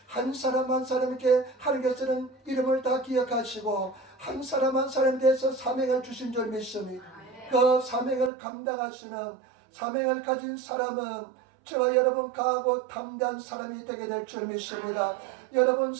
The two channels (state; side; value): drops out; left; at 8.3 s